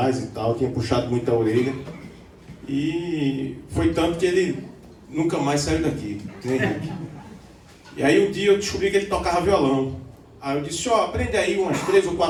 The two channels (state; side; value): identical; both; correlation 1.00